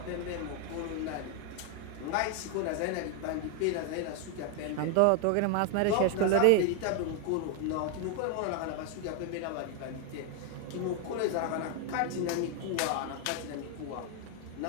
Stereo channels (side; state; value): both; different; correlation 0.01